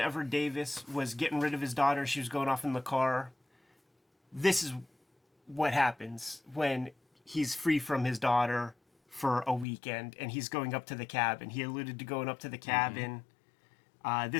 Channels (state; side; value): drops out; right; at 9.7 s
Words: Davis was getting rid of his daughter, she was going off in the car. This is what happens when he's free from his daughter for a weekend and he's going up to the cabin. He alluded to going up to the cabin.